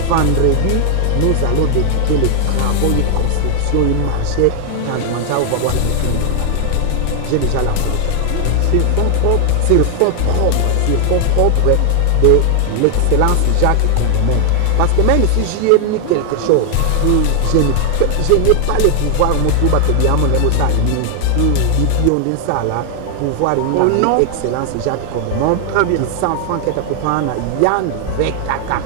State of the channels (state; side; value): different; both; correlation 0.00